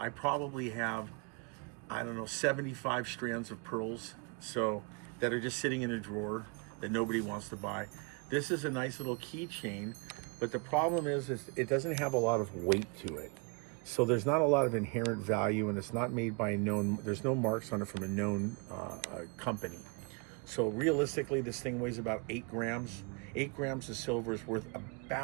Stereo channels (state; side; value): quieter; left; 33.4 dB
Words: probably have, I don't know, 75 strands of pearls so that are just sitting in a drawer that nobody wants to buy. This is a nice little keychain, but the problem is it doesn't have a lot of weight to it. So there's not a lot of inherent value, and it's not made by a known, there's no marks on it from a known company. So realistically, this thing weighs about 8 grams. 8 grams of silver is worth